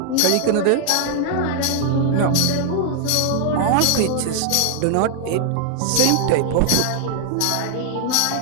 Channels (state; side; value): different; both; correlation 0.00